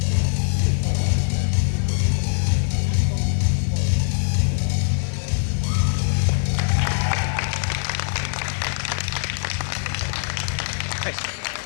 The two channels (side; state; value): right; silent; 63 dB below the other